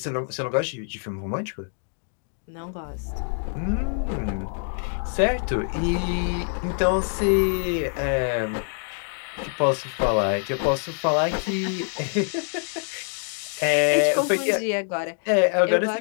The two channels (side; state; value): right; silent; 57 dB below the other